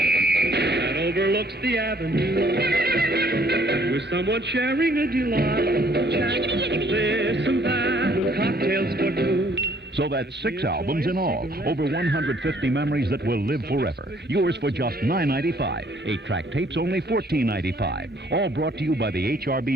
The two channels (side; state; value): both; normal; correlation 0.62